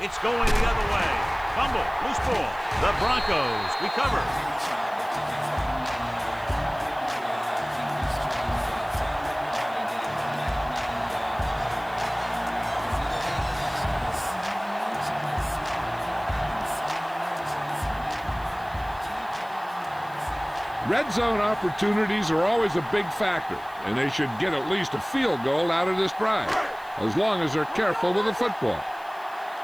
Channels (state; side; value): noise; right; hiss, 25 dB below the sound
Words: going the other way. Fumble, loose ball. The Broncos recover. Red zone opportunities are always a big factor, and they should get at least a field goal out of this drive, as long as they're careful with the football.